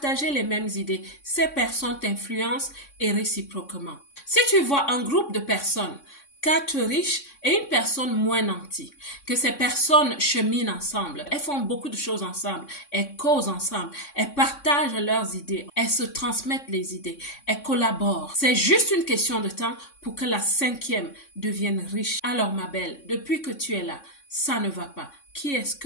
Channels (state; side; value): late; right; 3.6 ms